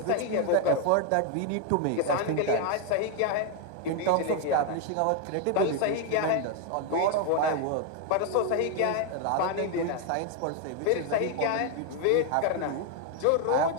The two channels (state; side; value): different; both; correlation 0.01